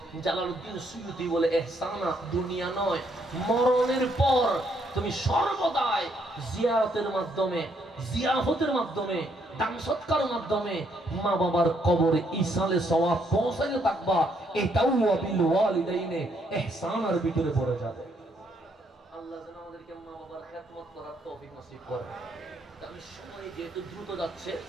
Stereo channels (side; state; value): both; normal; correlation 0.72